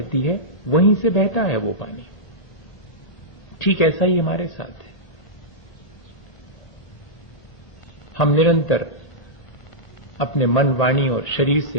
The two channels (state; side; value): late; right; 1.8 ms